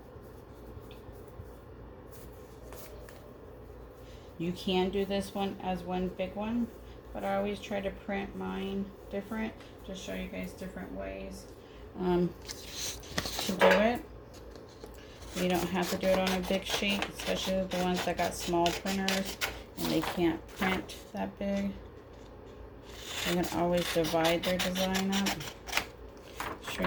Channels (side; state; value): both; identical; correlation 1.00